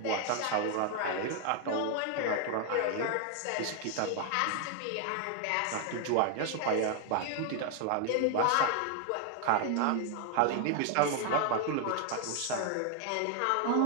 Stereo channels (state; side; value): different; both; correlation 0.00